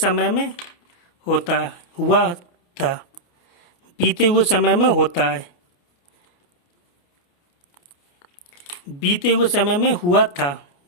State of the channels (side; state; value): right; late; 28 ms